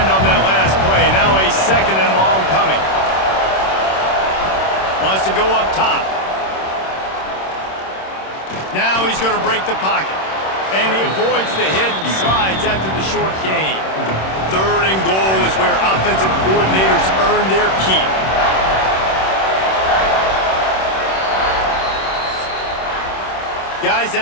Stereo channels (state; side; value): late; right; 26 ms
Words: on that last play. Now a second and long coming. Wants to go up top. Now he's going to break the pocket. And he avoids the hit and slides after the short gain. Third and goal is where offensive coordinators earn their keep. Guys,